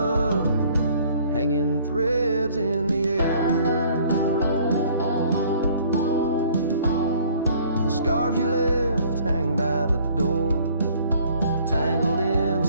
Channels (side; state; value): both; inverted; correlation -0.57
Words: hanging threads in the air. The scarves you left hang by the door, tangled in the